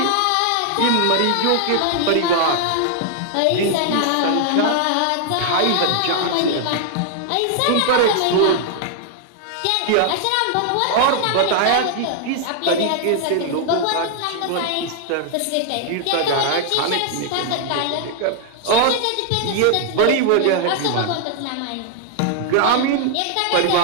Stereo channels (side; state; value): both; different; correlation 0.00